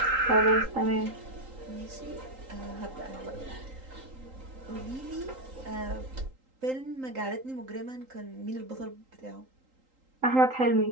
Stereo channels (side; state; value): left; late; 3.8 ms